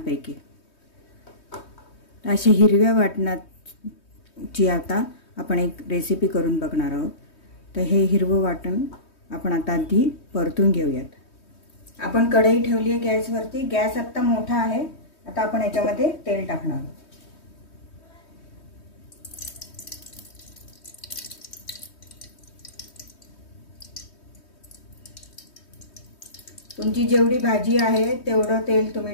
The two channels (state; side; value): late; right; 3.2 ms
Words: अशा हिरव्या वाटणाची आता आपण एक रेसिपी करून बघणार आहोत। तर हे हिरवं वाटण आपण आता आधी परतून घेऊयात। आपण कढई ठेवली आहे गॅसवरती। गॅस आता मोठा आहे। आता आपण याच्यामध्ये तेल टाकणार आहोत। तुमची जेवढी भाजी आहे तेवढं तेल